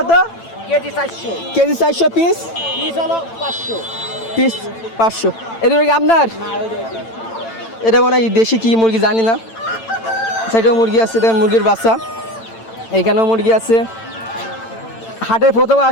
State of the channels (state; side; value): late; right; 8.9 ms